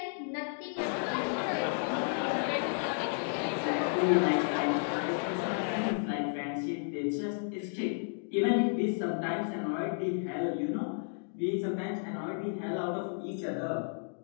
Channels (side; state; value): right; silent; digital silence